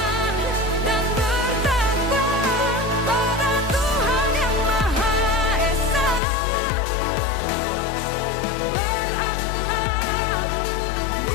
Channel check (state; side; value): drops out; right; at 6.2 s